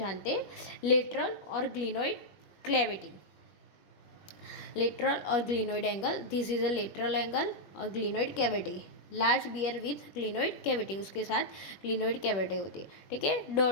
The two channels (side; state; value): right; late; 21 ms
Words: हैं। लेटरल और ग्लिनोइड क्लेविटी, लेटरल और glenoid angle, this is a lateral angle और glenoid cavity. Large bear with glenoid cavity, उसके साथ ग्लिनोइड कैविटी होती है। ठीक है,